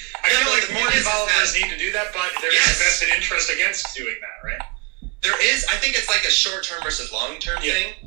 I feel like more developers need to do that, but there's a vested interest against doing that, right? There is. I think it's like a short-term versus long-term thing.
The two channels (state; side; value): quieter; left; 32.8 dB